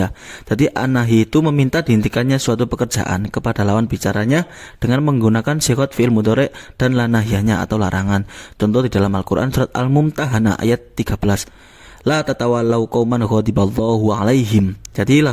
Jadi an-nahyi itu meminta dihentikannya suatu pekerjaan kepada lawan bicaranya dengan menggunakan sighot fi'il mudhari' dan la nahyanya atau larangan. Contoh di dalam Al-Qur'an surat Al-Mumtahanah ayat 13. La tatawallau qauman ghadiballahu alaihim. Jadi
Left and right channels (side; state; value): both; identical; correlation 1.00